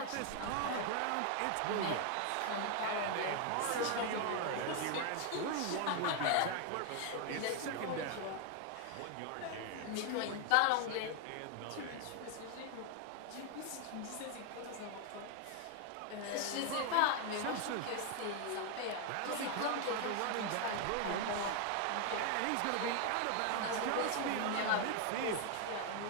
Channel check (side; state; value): both; different; correlation 0.01